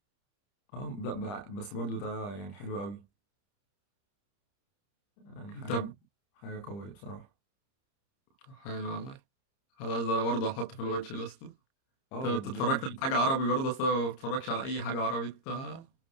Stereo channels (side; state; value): right; late; 30 ms